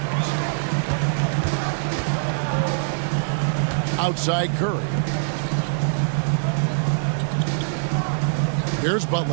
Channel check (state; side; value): silent; left; digital silence